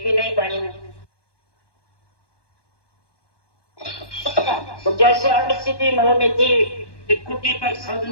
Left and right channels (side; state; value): right; late; 1.1 ms